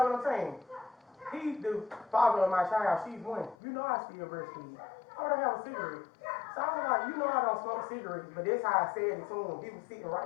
what I'm saying? He's the father of my child. She's 1. You know I still breastfeed. I don't have a cigarette. So I was like, you know I don't smoke cigarettes, but that's how I said it to him. He was sitting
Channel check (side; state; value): right; drops out; at 3.6 s